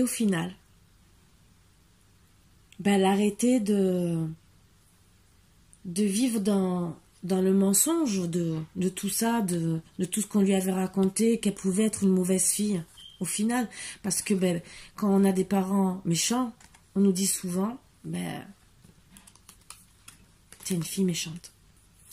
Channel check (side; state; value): both; identical; correlation 1.00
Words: au final, elle a arrêté de vivre dans le mensonge de tout ça, de tout ce qu'on lui avait raconté, qu'elle pouvait être une mauvaise fille, au final. Parce que quand on a des parents méchants, on nous dit souvent, c'est une fille méchante.